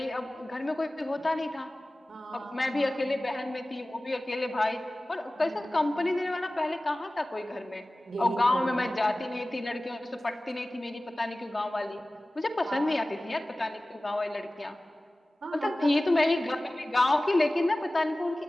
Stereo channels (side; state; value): both; normal; correlation 0.97